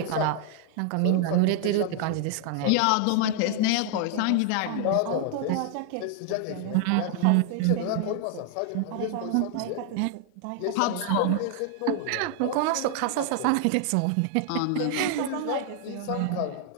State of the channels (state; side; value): different; both; correlation 0.00